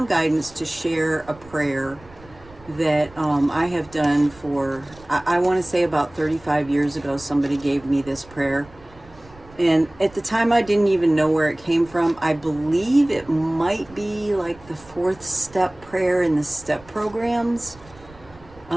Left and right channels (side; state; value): right; noise; rumble, 23 dB below the sound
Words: guidance to share a prayer that I have done for, I want to say about 35 years ago, somebody gave me this prayer. And at the time, I didn't even know where it came from. I believe it might be like the 4th step prayer in the step programs,